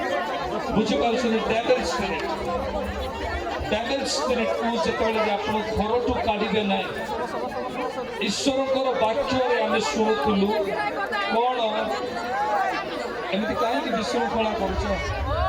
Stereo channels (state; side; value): identical; both; correlation 1.00